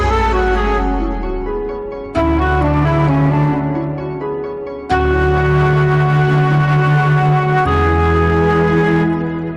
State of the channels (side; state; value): both; identical; correlation 1.00